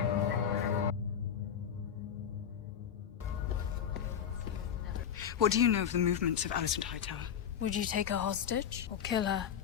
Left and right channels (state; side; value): quieter; right; 8.4 dB